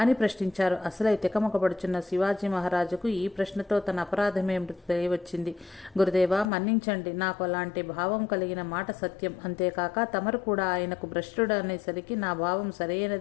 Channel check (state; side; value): drops out; right; at 6.5 s